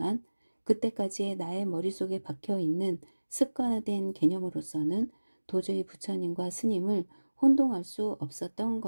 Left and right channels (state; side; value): inverted; both; correlation -1.00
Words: 그때까지의 나의 머릿속에 박혀있는 습관화된 개념으로서는 도저히 부처님과 스님을 혼동할 수 없었던